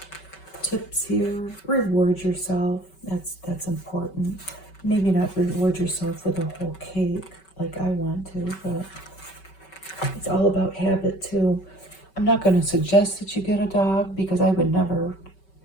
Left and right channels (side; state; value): right; late; 5.3 ms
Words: tips here. Reward yourself. That's important. Maybe not reward yourself with a whole cake like I want to, but it's all about habit too. I'm not going to suggest that you get a dog because I would never.